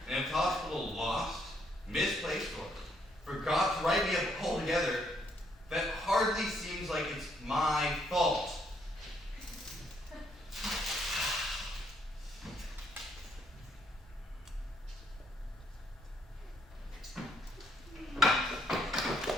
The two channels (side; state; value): both; normal; correlation 0.71